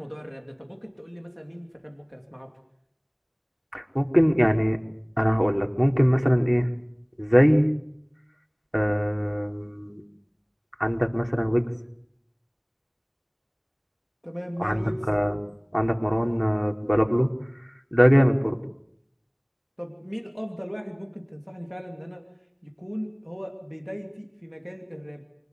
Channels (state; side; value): identical; both; correlation 1.00